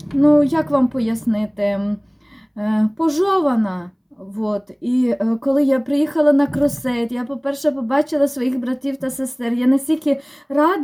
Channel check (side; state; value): both; identical; correlation 1.00